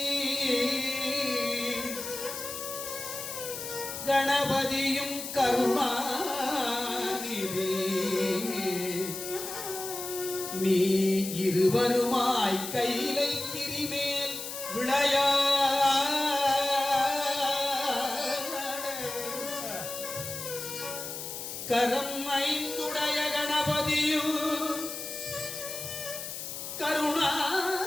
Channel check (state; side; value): noise; left; hiss, 7 dB below the sound